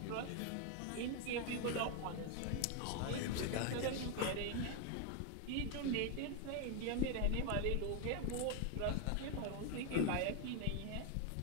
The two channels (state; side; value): different; both; correlation 0.01